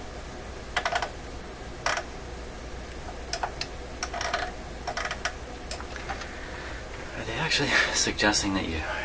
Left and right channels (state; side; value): identical; both; correlation 1.00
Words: Actually suggesting that you